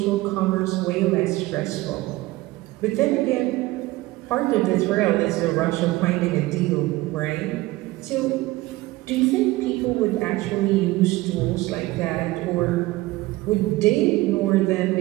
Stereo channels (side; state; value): left; quieter; 19.1 dB